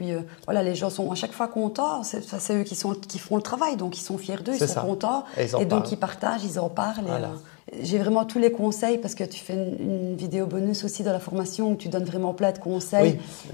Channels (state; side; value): quieter; right; 35.5 dB